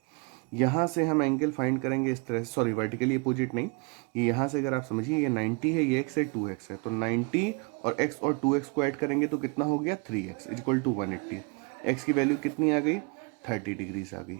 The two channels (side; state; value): left; quieter; 31.1 dB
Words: यहाँ से हम एंगल फाइंड करेंगे इस तरह से, सॉरी वर्टिकली अपोजिट नहीं, ये यहाँ से अगर आप समझिए ये 90 है, ये x है, 2x है, तो 90 और x और 2x को ऐड करेंगे तो कितना हो गया 3x इक्वल टू 180। x की वैल्यू कितनी आ गई 30 डिग्रीज आ गई,